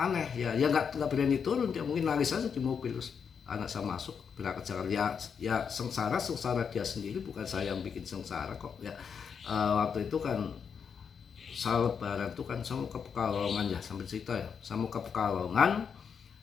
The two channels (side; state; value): right; quieter; 6.7 dB